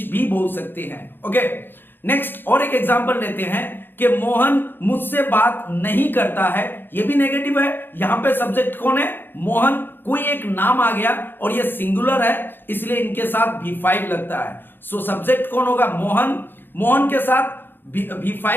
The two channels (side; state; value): right; late; 0.098 ms